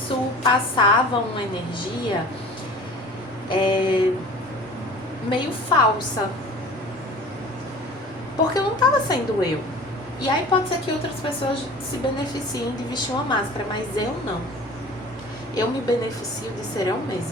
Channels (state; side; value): normal; both; correlation 0.42